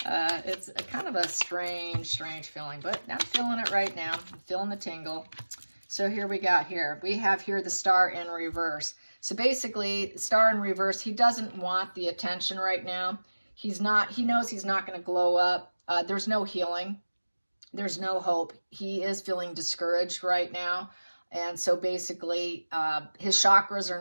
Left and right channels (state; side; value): inverted; both; correlation -1.00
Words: It's a kind of a strange feeling, but I'm feeling it right now. I'm feeling the tingle. So here we have here the star in reverse. So basically, star in reverse, he doesn't want the attention right now. He knows he's not going to glow up. There's no healing. There's no hope. He is feeling discouraged right now. And so basically, his chakras